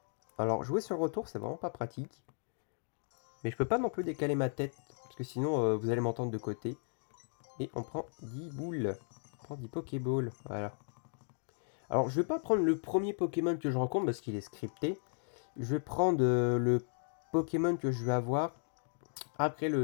Alors, jouer sur le retour, c'est vraiment pas pratique. Mais je peux pas non plus décaler ma tête. Parce que sinon, vous allez m'entendre de côté. Et on prend 10 boules. On prend 10 Pokéballs. Voilà. Alors, je vais pas prendre le premier Pokémon que je rencontre parce qu'il est scripté. Je vais prendre le Pokémon que je vais avoir après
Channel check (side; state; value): right; silent; digital silence